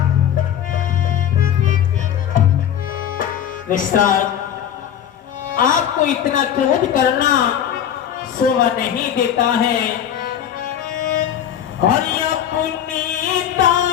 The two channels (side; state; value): right; quieter; 9.8 dB